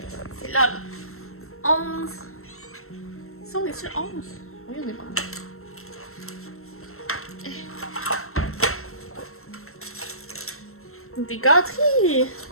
C'est là, là. 11. Ça, on est sur 11? Oui, on est bon. Des gâteries!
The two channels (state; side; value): late; right; 0.62 ms